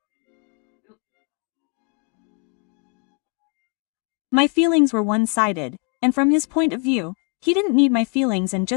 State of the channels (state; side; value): quieter; right; 36.8 dB